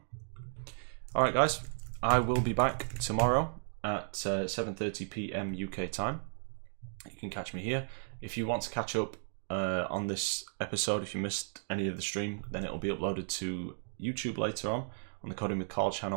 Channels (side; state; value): left; silent; digital silence